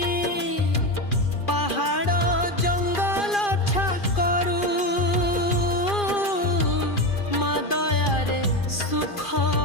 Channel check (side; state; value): right; late; 2.4 ms